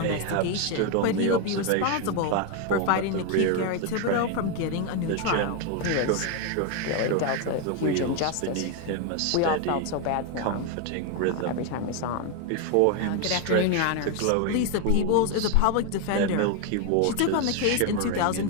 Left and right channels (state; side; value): different; both; correlation 0.01